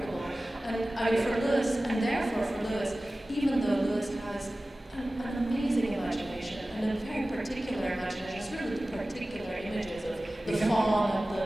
And for Lewis, and therefore for Lewis, even though Lewis has an amazing imagination, and a very particular imagination, it's really the particular images of the fawn and the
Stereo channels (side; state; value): both; normal; correlation 0.96